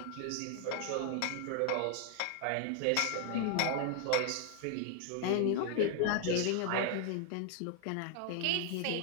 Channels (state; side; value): different; both; correlation 0.00